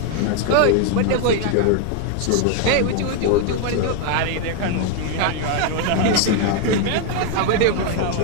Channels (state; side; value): different; both; correlation 0.01